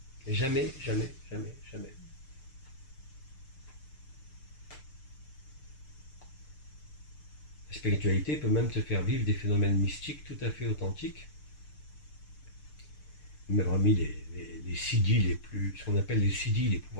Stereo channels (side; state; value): right; late; 6.7 ms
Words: Jamais, jamais, jamais, jamais. La spiritualité peut même te faire vivre des phénomènes mystiques tout à fait authentiques. Même parmi les siddhis ce qu'on appelle les siddhis, les